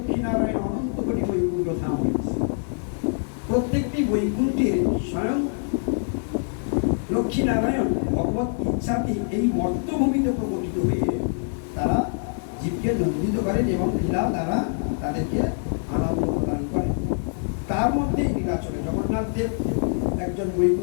নারায়ণ, অনন্ত কোটি বৈকুণ্ঠ ধাম হয়েছে। প্রত্যেকটি বৈকুণ্ঠের স্বয়ং লক্ষ্মী নারায়ণ ভগবত ইচ্ছাতে এই মর্তভূমিতে প্রকটিত হয়ে তারা জীবকে নন্দিত করেন এবং লীলা দ্বারা তাদেরকে আনন্দ প্রদান করেন। তার মধ্যে নীলাচলে জগন্নাথ দেব একজন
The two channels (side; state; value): right; silent; digital silence